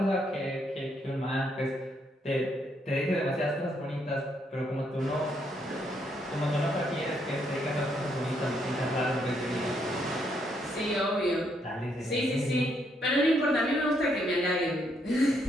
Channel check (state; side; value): normal; both; correlation 0.74